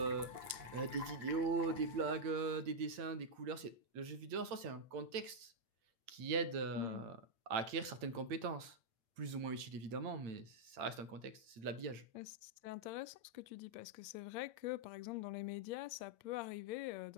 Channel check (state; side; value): late; left; 8.9 ms